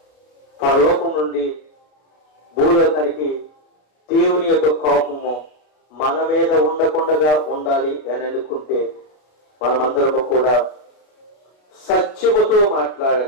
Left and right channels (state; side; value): late; right; 33 ms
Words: పరలోకం నుండి భూలోకానికి దేవుని యొక్క కోపము మన మీద ఉండకుండా ఉండాలి అని అనుకుంటే మనమందరము కూడా సత్యముతో